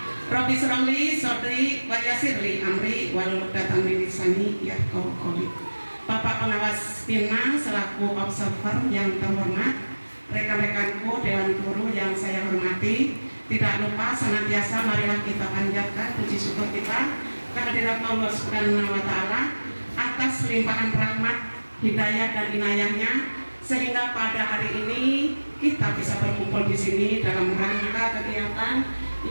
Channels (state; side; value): inverted; both; correlation -1.00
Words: Rabbi shrahli sadri wa yassirli amri wahlul 'uqdatam min lisani yafqahu qawli. Bapak pengawas PINMA selaku observer yang terhormat, rekan-rekanku Dewan Guru yang saya hormati, tidak lupa senantiasa marilah kita panjatkan puji syukur kita kehadirat Allah Subhanahu wa Ta'ala atas limpahan rahmat, hidayah dan inayahnya, sehingga pada hari ini kita bisa berkumpul di sini dalam rangka kegiatan